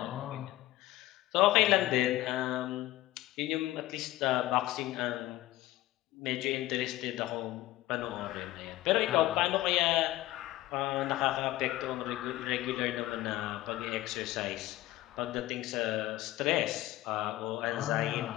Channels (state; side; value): quieter; right; 16.5 dB